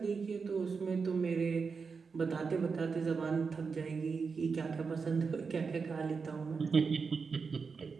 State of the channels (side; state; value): left; quieter; 5.2 dB